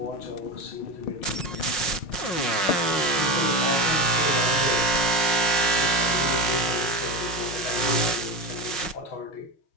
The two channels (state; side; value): late; right; 6.2 ms